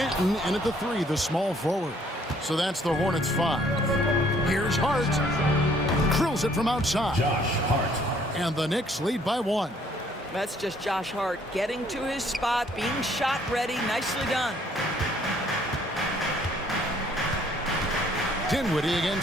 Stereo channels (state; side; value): normal; both; correlation 0.62